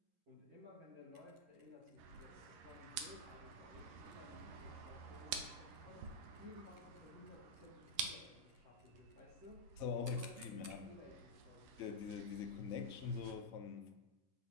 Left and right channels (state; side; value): late; left; 11 ms